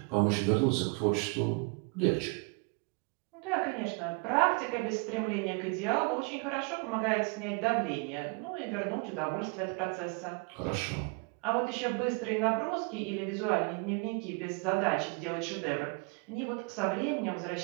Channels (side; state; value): left; quieter; 33.3 dB